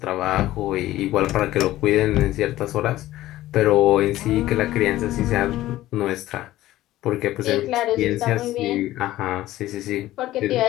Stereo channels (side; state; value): right; quieter; 15.4 dB